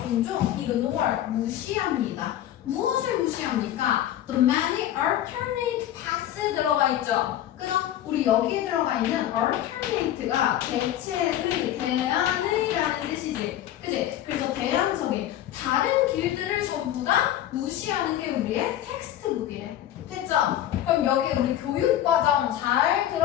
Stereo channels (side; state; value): right; quieter; 12.3 dB